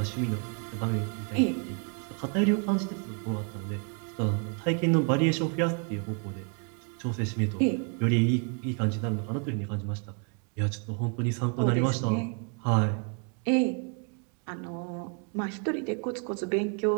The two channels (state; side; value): quieter; left; 39.9 dB